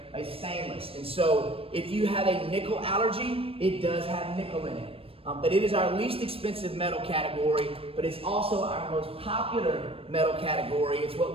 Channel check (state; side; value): late; left; 0.28 ms